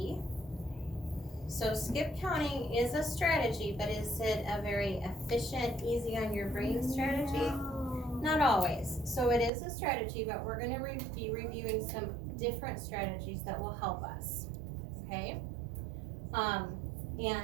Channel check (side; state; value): left; drops out; at 9.5 s